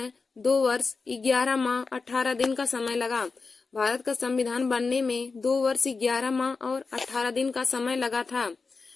2 वर्ष 11 माह 18 दिन का समय लगा। भारत का संविधान बनने में 2 वर्ष 11 माह और 18 दिन का समय लगा था।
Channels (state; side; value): quieter; right; 4.4 dB